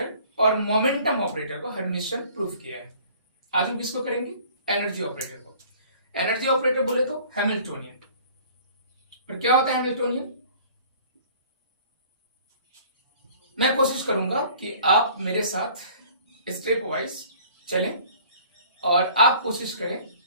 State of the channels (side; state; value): both; inverted; correlation -0.51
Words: और मोमेंटम ऑपरेटर को हर्मिशन प्रूफ किया है। आज हम किसको करेंगे? एनर्जी ऑपरेटर को। एनर्जी ऑपरेटर बोले तो हैमिल्टोनियन। पर क्या होता है हैमिल्टोनियन? मैं कोशिश करूंगा कि आप मेरे साथ स्टेप वाइज चलें और आप कोशिश करें